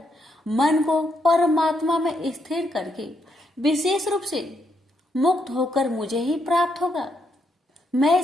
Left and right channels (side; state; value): both; normal; correlation 0.78